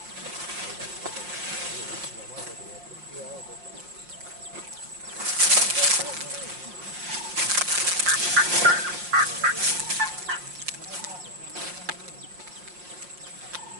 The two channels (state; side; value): late; left; 5.6 ms